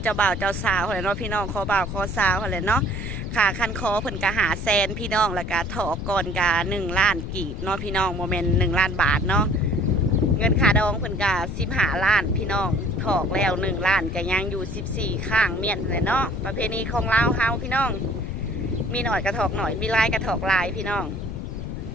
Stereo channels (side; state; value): left; noise; rumble, 5 dB below the sound